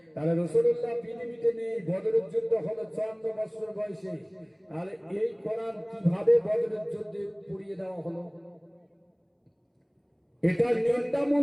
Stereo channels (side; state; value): both; identical; correlation 1.00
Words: তাহলে রাসূলুল্লাহ পৃথিবীতে নেই, বদরের যুদ্ধ হলো 54 বছর বয়সে। তাহলে এই কোরআন কিভাবে বদরের যুদ্ধে পুড়িয়ে দেওয়া হলো? এটা